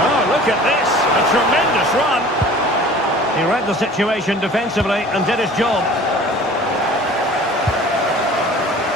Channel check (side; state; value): both; normal; correlation 0.45